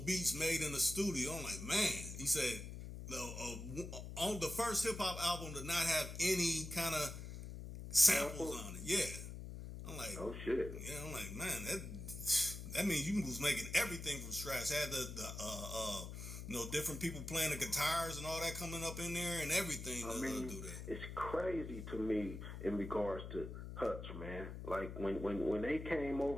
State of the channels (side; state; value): left; noise; hum, 8 dB below the sound